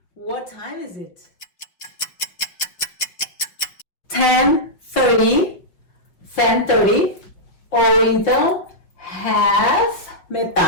What time is it? 10:30. 10:30, ou então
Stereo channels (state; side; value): late; right; 5.6 ms